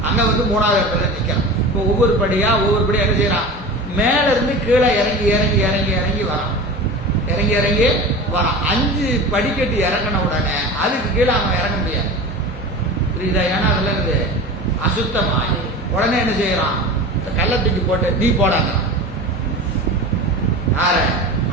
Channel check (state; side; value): normal; both; correlation 0.32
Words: அங்க வந்து 3வது இடத்துல நிற்கிறான். இப்போ ஒவ்வொரு படியா என்ன செய்யறான்? மேல இருந்து கீழே இறங்கி வரான். 5 படிக்கட்டு இறங்கின உடனே அதுக்கு கீழே அவன் இறங்க முடியாது. புரியுதா? ஏன்னா அதுல இருந்து அசுத்தமாயி. உடனே என்ன செய்யறான்? கள்ளத்துக்கு போட்டு நீ போடாங்க. யார?